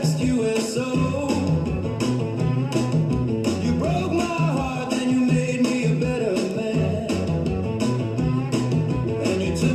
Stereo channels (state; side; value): identical; both; correlation 1.00